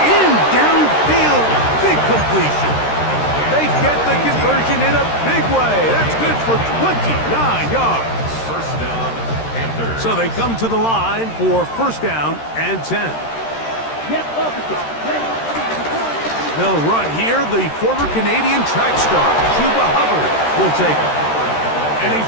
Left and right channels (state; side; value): late; right; 13 ms